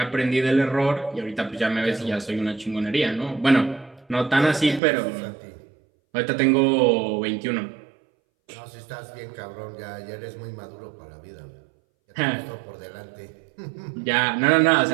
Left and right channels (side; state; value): left; drops out; at 4.8 s